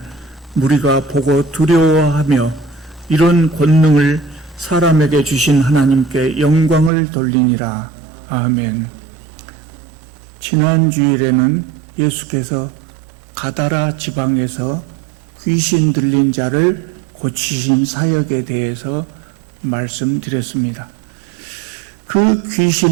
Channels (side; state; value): left; drops out; at 6.9 s